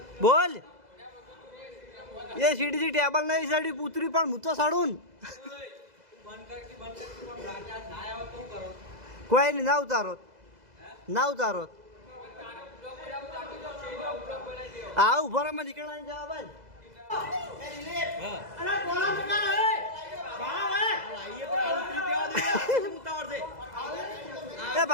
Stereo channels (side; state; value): left; late; 2.0 ms